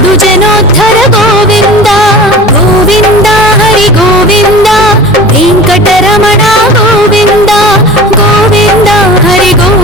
ಜನೋದ್ಧರ ಗೋವಿಂದ. ಗೋವಿಂದ ಹರಿ ಗೋವಿಂದ, ವೆಂಕಟರಮಣ ಗೋವಿಂದ. ಗೋವಿಂದ ಹರಿ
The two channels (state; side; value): normal; both; correlation 0.38